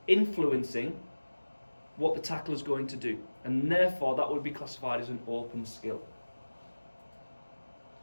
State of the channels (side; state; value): both; inverted; correlation -1.00